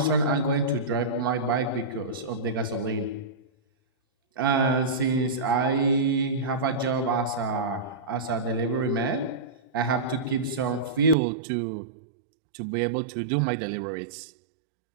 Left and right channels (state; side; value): drops out; left; at 11.2 s